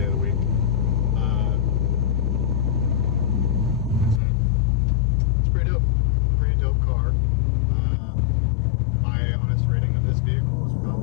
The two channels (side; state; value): right; drops out; at 4.2 s